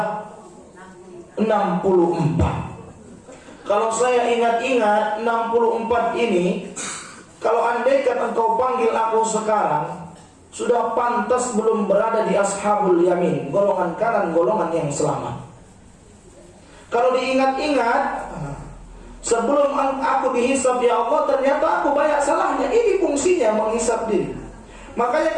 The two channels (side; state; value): both; identical; correlation 1.00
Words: 64. Kalau saya ingat-ingat 64 ini, kalau andaikan engkau panggil aku sekarang, sudah pantas belum berada di ashabul yamin, golongan kanan, golongan yang selamat. Kalau diingat-ingat, sebelum aku dihisab ya Allah, ternyata aku banyak salahnya. Ini fungsinya menghisab diri. Makanya